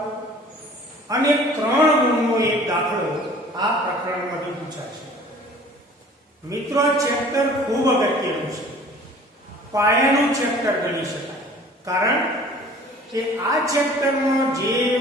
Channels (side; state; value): both; normal; correlation 0.49